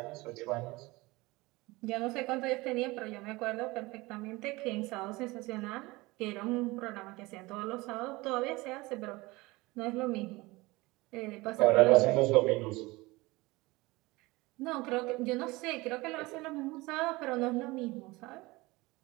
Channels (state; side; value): quieter; left; 22.0 dB